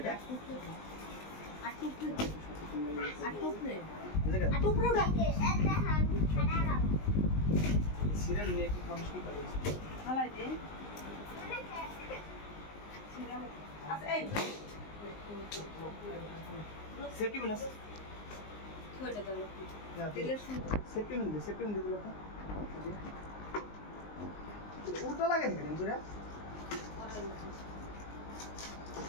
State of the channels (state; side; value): late; right; 19 ms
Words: এটা উল্টো লাগে দেখেন পুরা